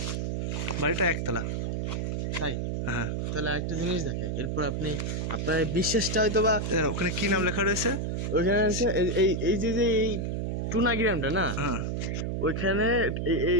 বাড়িটা একতলা। তাই? হ্যাঁ। তাহলে একটা জিনিস দেখে, এরপর আপনি আপনার বিশ্বাসটা হয়তো বা, ওখানে কি নাম লেখা রয়েছে? ওইখানে আছে এই যে এই টুনা গ্রামটা না, হ্যাঁ, ওইখানে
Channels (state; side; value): noise; right; hum, 1 dB below the sound